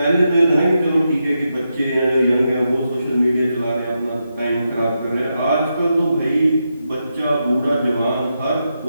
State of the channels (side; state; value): both; inverted; correlation -0.86